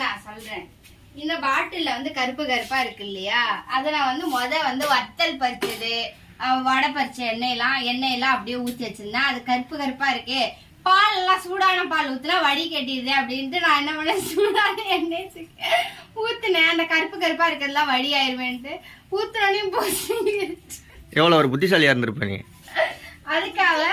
நான் சொல்றேன். இந்த பாட்டில வந்து கருப்பு கருப்பா இருக்கு இல்லையா, அத நான் வந்து வத்தல் பறிச்சது, வடை பறிச்ச எண்ணெயெல்லாம் அப்படியே ஊத்தி வச்சிருந்தேன். அது கருப்பு கருப்பா இருக்கு. பால் எல்லாம் சூடான பால் ஊத்துனா வடி கட்டிடுது அப்படின்ட்டு நான் என்ன பண்ணேன், சூடான எண்ணெய் ஊத்துனேன். அந்த கருப்பு கருப்பா இருக்கிறதுலாம் வடி ஆயிருவேன்ட்டு ஊத்துனோடனே போச்சு. எவ்வளவு ஒரு புத்திசாலியா இருந்திருப்ப நீ. அதுக்காக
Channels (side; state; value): both; identical; correlation 1.00